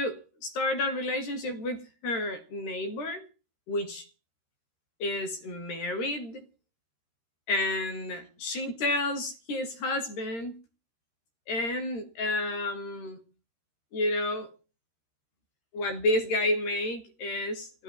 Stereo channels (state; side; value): late; right; 13 ms